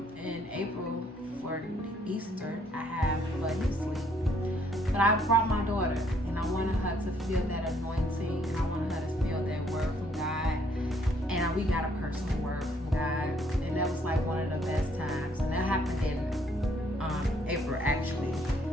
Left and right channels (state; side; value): normal; both; correlation 0.66